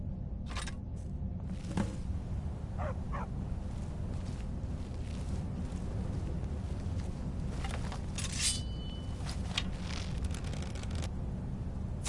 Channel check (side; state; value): both; identical; correlation 1.00